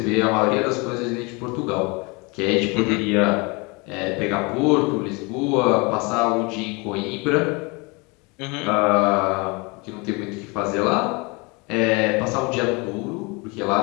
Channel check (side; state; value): right; quieter; 28.3 dB